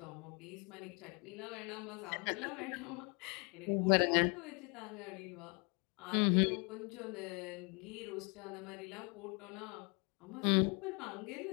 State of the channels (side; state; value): right; quieter; 32.8 dB